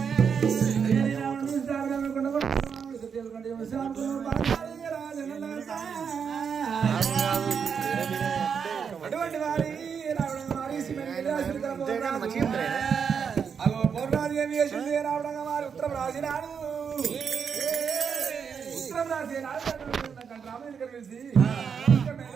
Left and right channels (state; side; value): quieter; left; 6.7 dB